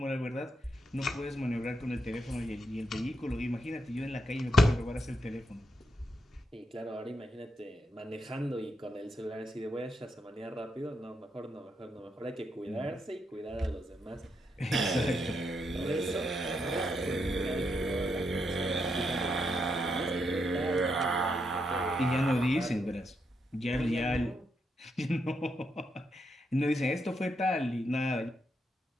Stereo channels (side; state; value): both; normal; correlation 0.80